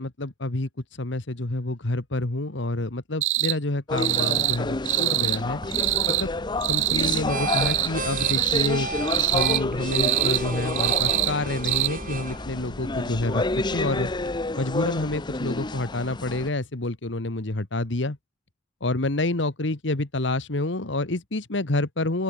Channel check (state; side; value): normal; both; correlation 0.22